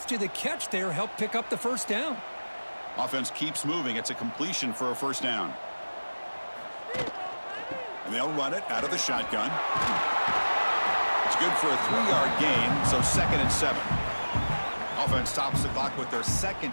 the catch there helped pick up the first down. Offense keeps moving. It's a completion for a first down. And they'll run it out of the shotgun. It's good for a 3-yard gain, so 2nd and 7. Offense stops the clock with their 2nd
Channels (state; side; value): inverted; both; correlation -1.00